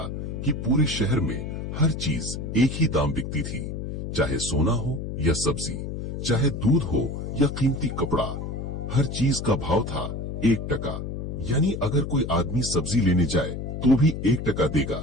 कि पूरे शहर में हर चीज एक ही दाम बिकती थी, चाहे सोना हो या सब्जी, चाहे दूध हो या कीमती कपड़ा। हर चीज का भाव था 1 टका। यानी अगर कोई आदमी सब्जी लेने जाए तो भी 1 टका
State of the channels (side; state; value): left; noise; hum, 5 dB below the sound